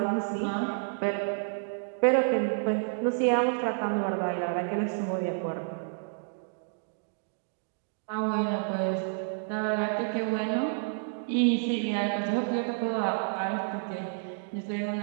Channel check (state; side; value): silent; left; digital silence